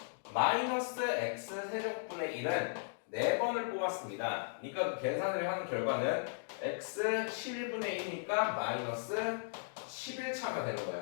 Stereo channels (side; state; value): right; silent; digital silence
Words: 마이너스 x 세제곱분의 1은 4번을 뽑았습니다. 그러니까 그 계산을 한 결과는 x 11분의 1이니까 마이너스 11차가 되는